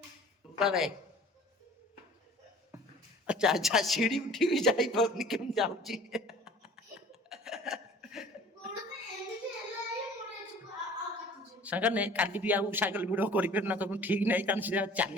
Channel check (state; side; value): normal; both; correlation 0.47